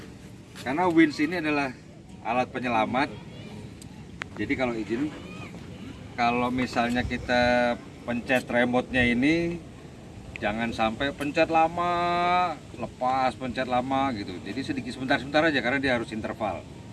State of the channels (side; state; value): both; identical; correlation 1.00